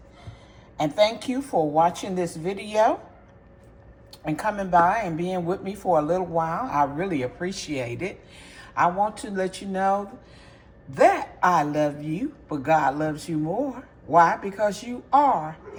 And thank you for watching this video and coming by and being with me for a little while. I really appreciate it. I want to let you know that I love you, but God loves you more. Why? Because you are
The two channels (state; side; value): identical; both; correlation 1.00